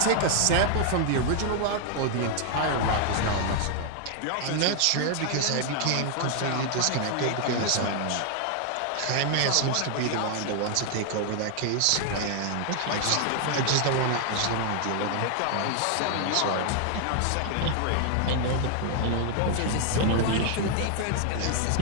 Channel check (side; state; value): both; different; correlation 0.00